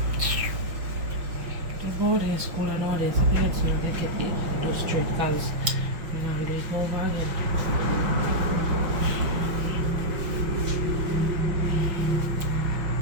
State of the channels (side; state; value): left; late; 5.8 ms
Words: They go in school and all this. I think so they get it do straight because you know they go over again.